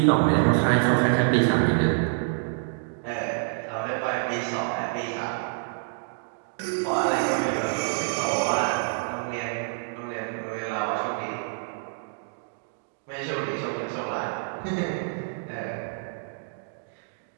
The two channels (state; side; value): silent; left; digital silence